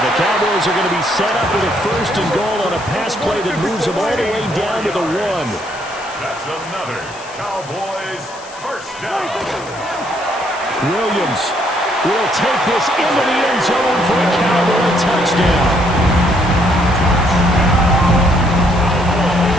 the Cowboys are going to be set up with a first and goal on a pass play that moves them all the way down to the 1. That's another Cowboys first down. Williams will take this into the end zone for a Cowboy touchdown.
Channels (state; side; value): noise; left; hiss, 19 dB below the sound